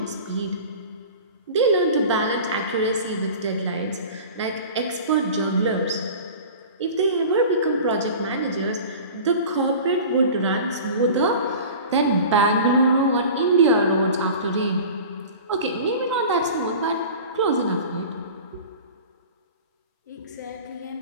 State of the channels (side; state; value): both; inverted; correlation -0.38